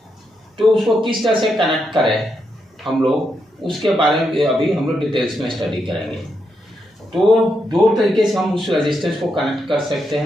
तो उसको किस तरह से कनेक्ट करें हम लोग, उसके बारे में अभी हम लोग डिटेल्स में स्टडी करेंगे। तो दो तरीके से हम उस रेजिस्टेंस को कनेक्ट कर सकते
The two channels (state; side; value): normal; both; correlation 0.82